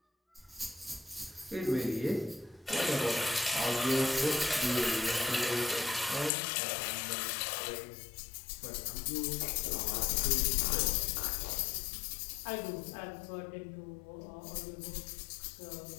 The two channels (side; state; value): right; drops out; at 6.3 s